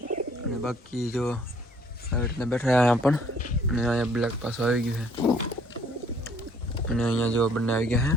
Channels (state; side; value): normal; both; correlation 0.60